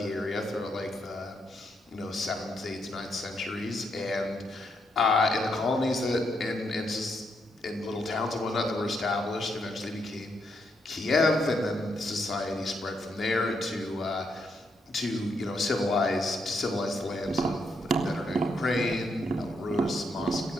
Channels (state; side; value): normal; both; correlation 0.78